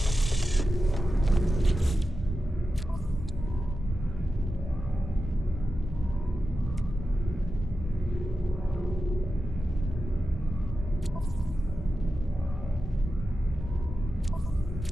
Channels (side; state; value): both; normal; correlation 0.91